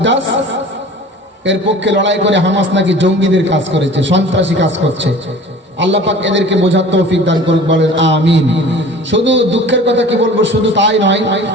এর পক্ষে লড়াই করে হামাস নাকি জঙ্গিদের কাজ করেছে, সন্ত্রাসী কাজ করছে। আল্লাহ পাক এদেরকে বোঝার তৌফিক দান করুক, বলেন আমিন। শুধু দুঃখের কথা কি বলবো, শুধু তাই নয়,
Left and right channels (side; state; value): both; normal; correlation 0.43